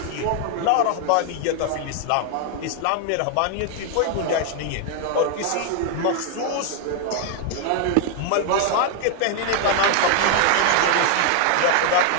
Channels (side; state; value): both; different; correlation 0.00